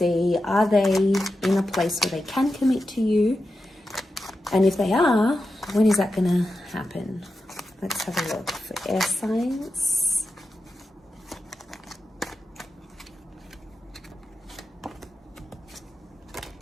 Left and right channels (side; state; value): both; normal; correlation 0.90